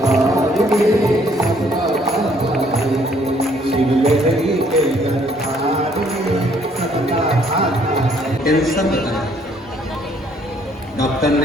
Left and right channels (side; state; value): both; normal; correlation 0.64